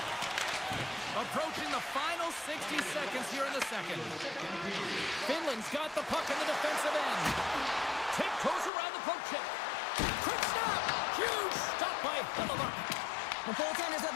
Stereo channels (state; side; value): drops out; right; at 8.7 s